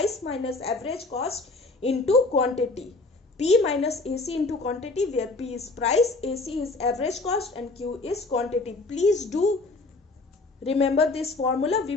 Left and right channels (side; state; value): right; quieter; 3.3 dB